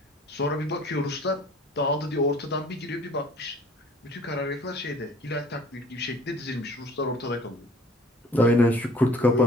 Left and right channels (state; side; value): normal; both; correlation 0.51